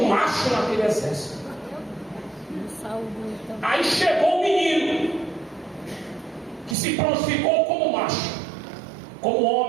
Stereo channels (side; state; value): left; drops out; at 6.8 s